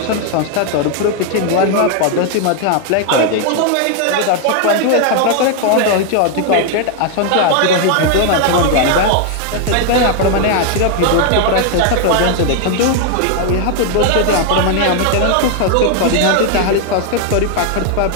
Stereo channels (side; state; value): both; different; correlation 0.00